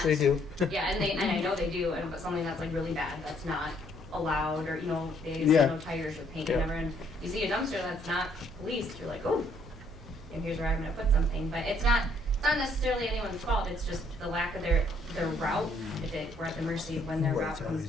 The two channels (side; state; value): both; normal; correlation 0.66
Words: they do. Yeah, and I know they do, and but something that's like really bad, that's not allowed, or, you know, they say Yeah. no tires or paint, Yeah. whatever, and you see a dumpster that's not policed, you're like, oh, and here's where I'm gonna put something, but it's not necessarily anyone's fault, it's just the lack of their route, we're at the mercy of when their route comes